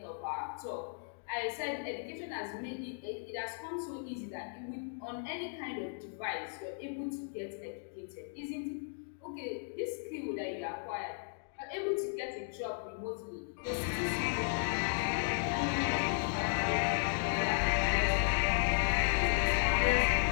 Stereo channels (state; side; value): silent; right; digital silence